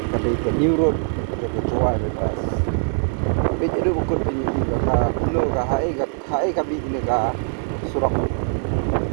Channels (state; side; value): silent; left; digital silence